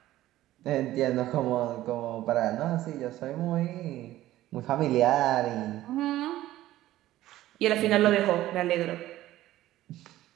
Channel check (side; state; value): left; quieter; 14.9 dB